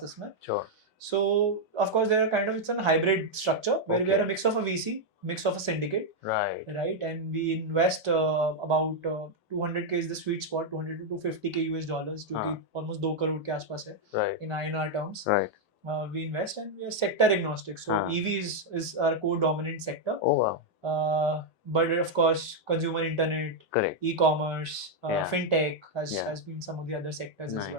में. So of course there are kind of, it's a hybrid structure where we are a mix of a VC, mix of a syndicate, right, and we invest about 200k is the sweet spot, 200 to 250k US dollars, जो कि almost 2 crore के आसपास है in INR terms. We invest and we are sector agnostic. So EV is our core dominant sector. Oh wow. But of course consumer internet, e-commerce, fintech has been some of the other sectors as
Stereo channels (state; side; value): normal; both; correlation -0.01